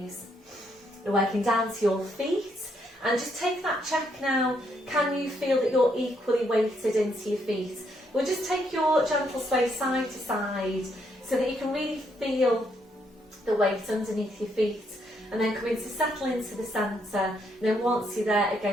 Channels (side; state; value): both; normal; correlation 0.74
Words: We're working down to your feet, and just take that check now. Can you feel that you're equally weighted into your feet? We'll just take your gentle sway side to side so that you can really feel the weight underneath your feet, and then come into settle into the centre. And then once you're there,